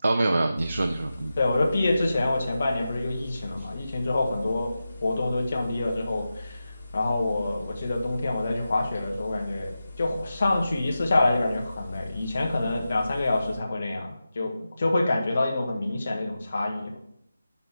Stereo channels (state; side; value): inverted; both; correlation -0.92